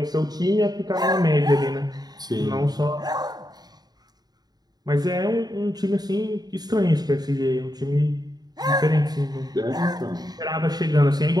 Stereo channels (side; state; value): left; late; 0.19 ms